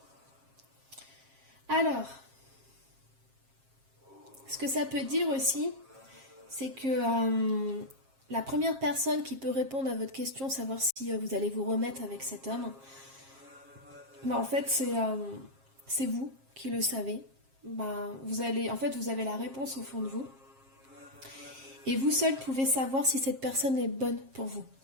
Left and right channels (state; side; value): late; left; 7.5 ms